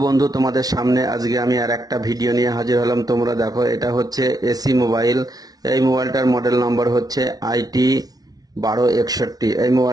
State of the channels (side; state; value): left; late; 0.19 ms